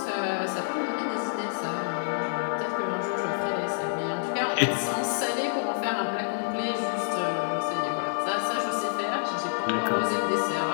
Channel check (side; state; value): right; silent; digital silence